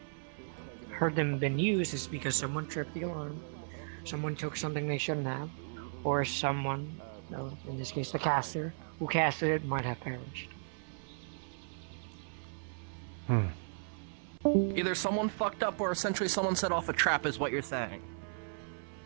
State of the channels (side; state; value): left; silent; 54 dB below the other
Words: heard them been used is because someone tripped the alarm, someone took something they shouldn't have, or someone, no, in this case the caster, who casted it might have perished. Either someone fucked up or essentially someone set off a trap, is what you're saying.